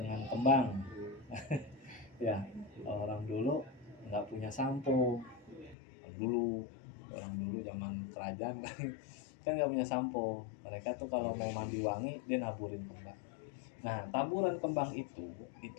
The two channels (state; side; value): drops out; right; at 5.8 s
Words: kembang. Ya, orang dulu nggak punya sampo. Orang dulu zaman kerajaan kan nggak punya sampo. Mereka tuh kalau mau mandi wangi dia naburin kembang. Nah, taburan kembang